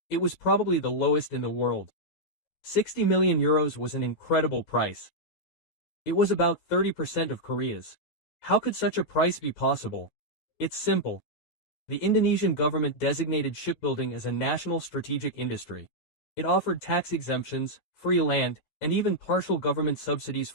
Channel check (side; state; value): right; late; 11 ms